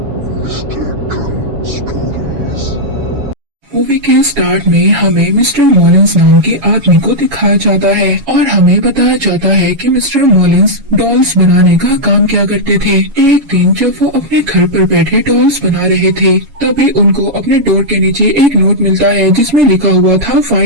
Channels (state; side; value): late; left; 7.1 ms